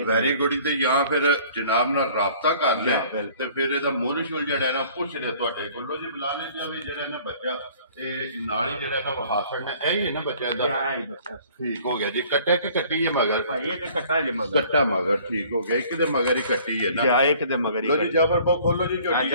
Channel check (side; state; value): both; inverted; correlation -0.53